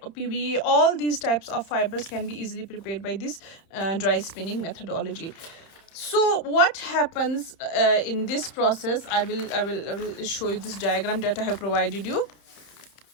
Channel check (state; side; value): late; right; 30 ms